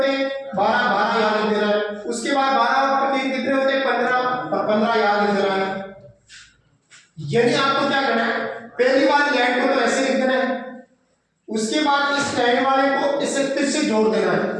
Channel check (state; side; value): identical; both; correlation 1.00